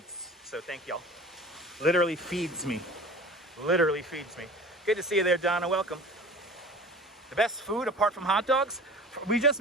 So thank y'all. Literally feeds me. Literally feeds me. Good to see you there, Donna. Welcome. The best food apart from hot dogs? We just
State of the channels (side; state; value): both; normal; correlation 0.40